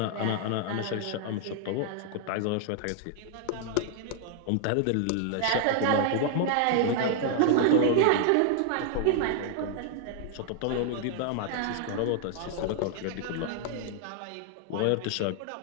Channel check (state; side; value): different; both; correlation 0.00